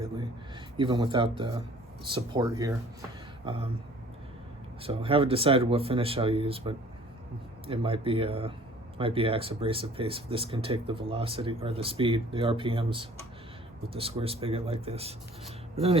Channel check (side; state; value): both; normal; correlation 0.51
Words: even without the support here. So I haven't decided what finish I'll use, but it might be axe abrasive paste. This can take the velocity or the speed, the RPMs, with the square spigot like this. But